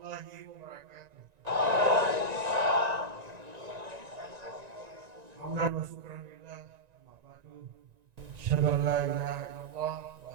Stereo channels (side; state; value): left; late; 1.9 ms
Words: wabarakatuh. Hamdan wa syukran lillah, amma ba'du. Asyhadu an la ilaha illallah wa